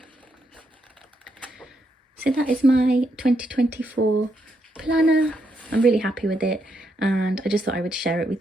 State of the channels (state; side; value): normal; both; correlation 0.79